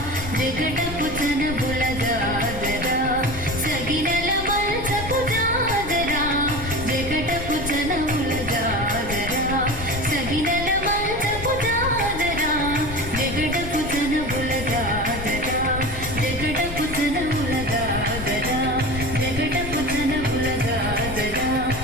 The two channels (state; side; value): noise; left; rumble, 9 dB below the sound